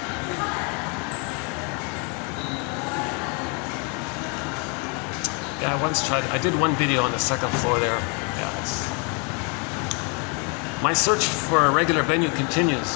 Yeah, I once tried. I did one video on the second floor there. Yeah, my search for a regular venue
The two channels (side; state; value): right; quieter; 34.6 dB